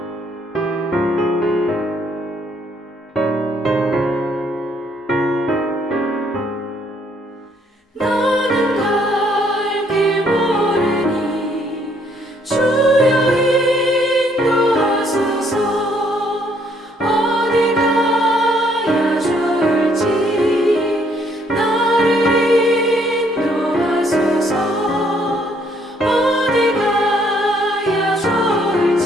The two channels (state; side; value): normal; both; correlation 0.67